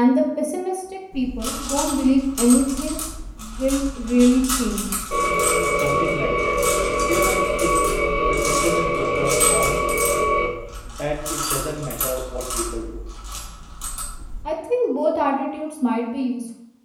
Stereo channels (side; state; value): both; identical; correlation 1.00